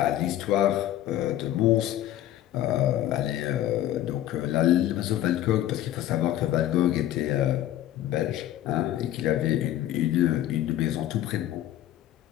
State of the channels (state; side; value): quieter; right; 12.9 dB